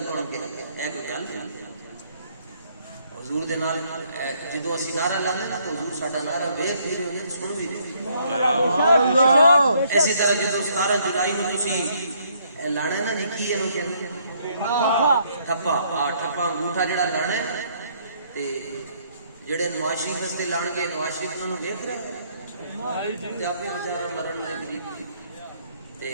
کون کہے گا اے کوئی گل نہیں حضور دے نال جدوں اسی نعرہ لانے نا تو حضور ساڈا نعرہ ویکھ بھی رہے ہیں سن بھی رہے سبحان اللہ اسی طرح جدوں 17 جولائی نوں تسی لانا نا نکی اینو کہندے ٹھپا ٹھپا انگوٹھا جڑا لانا ہے تے جڑے نواز شریف واسطے لان گے نواز شریف انہاں نوں ویکھ رہے تے اپنے بیچارہ مرن دے قریب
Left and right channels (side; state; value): both; inverted; correlation -0.67